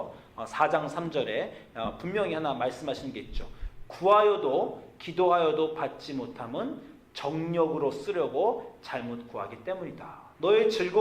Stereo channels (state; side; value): identical; both; correlation 1.00